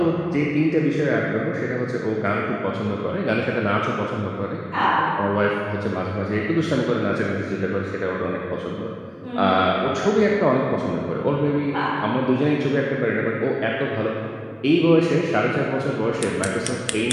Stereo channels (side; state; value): both; identical; correlation 1.00